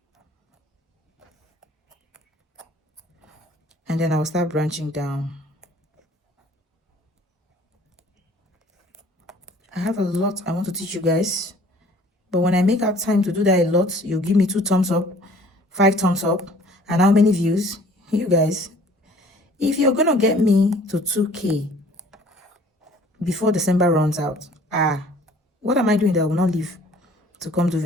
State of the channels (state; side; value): normal; both; correlation 0.53